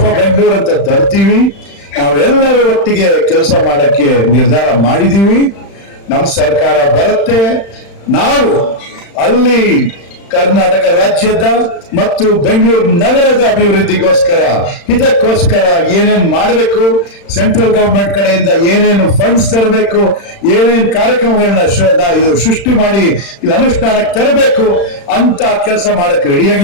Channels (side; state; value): right; late; 35 ms